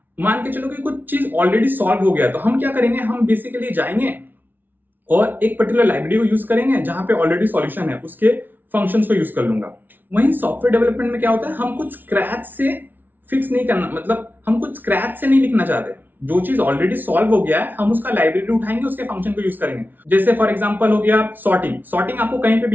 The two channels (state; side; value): late; left; 0.087 ms